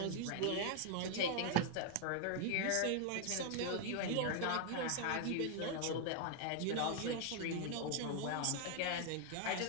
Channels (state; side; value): different; both; correlation 0.00